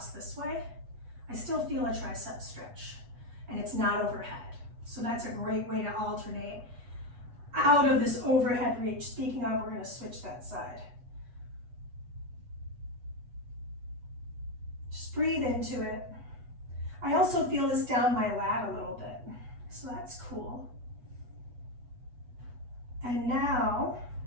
this way, I still feel a tricep stretch and it's not overhead. So that's a great way to alternate out of this overhead reach. Speaking of, we're going to switch that side. Just breathe into it. I also feel this down my lat a little bit, so that's cool. And now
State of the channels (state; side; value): late; left; 8.2 ms